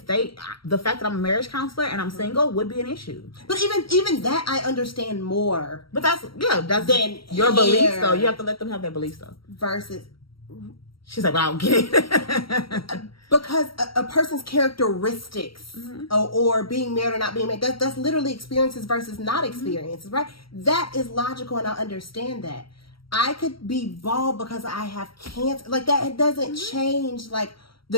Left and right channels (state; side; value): late; right; 0.74 ms